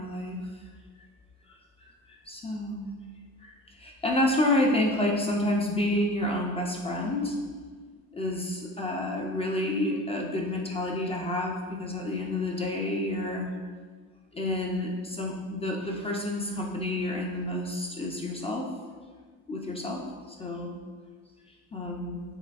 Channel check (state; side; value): normal; both; correlation 0.36